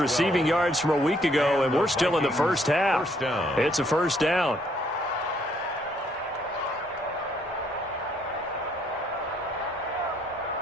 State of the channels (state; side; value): normal; both; correlation 0.68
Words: yards from a week ago, and we're still in the first half. It's a 1st down.